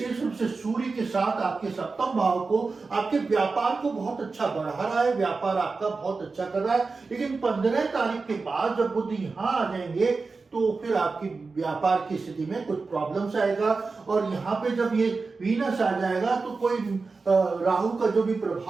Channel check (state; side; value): quieter; left; 4.2 dB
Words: रूप से सूर्य के साथ आपके सप्तम भाव को, आपके व्यापार को बहुत अच्छा बढ़ा रहा है, व्यापार आपका बहुत अच्छा कर रहा है। लेकिन 15 तारीख के बाद जब बुध यहाँ आ जाएंगे, तो फिर आपकी व्यापार की स्थिति में कुछ प्रॉब्लम्स आएगा। और यहाँ पे जब ये वीनस आ जाएगा, तो कोई राहु का जो भी